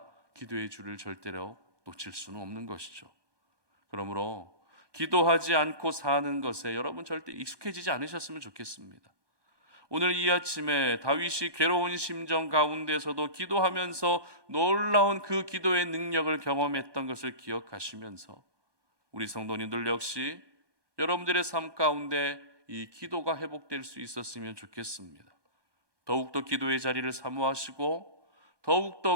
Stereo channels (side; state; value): left; late; 1.2 ms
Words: 기도의 줄을 절대로 놓칠 수는 없는 것이죠. 그러므로 기도하지 않고 사는 것에 여러분 절대 익숙해지지 않으셨으면 좋겠습니다. 오늘 이 아침에 다윗이 괴로운 심정 가운데서도 기도하면서 놀라운 그 기도의 능력을 경험했던 것을 기억하시면서 우리 성도님들 역시 여러분들의 삶 가운데 이 기도가 회복될 수 있었으면 좋겠습니다. 더욱더 기도의 자리를 사모하시고